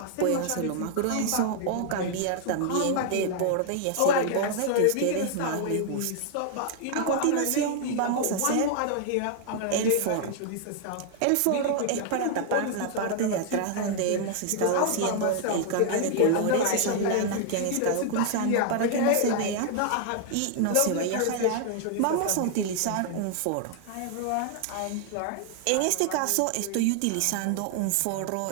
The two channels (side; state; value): both; different; correlation 0.00